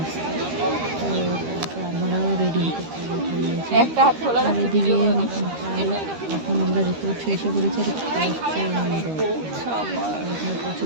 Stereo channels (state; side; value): late; left; 13 ms